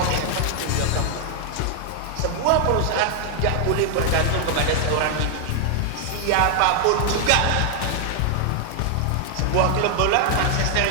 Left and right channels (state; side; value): different; both; correlation 0.00